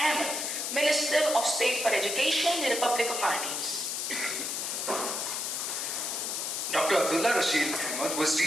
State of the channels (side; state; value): left; noise; hiss, 2 dB below the sound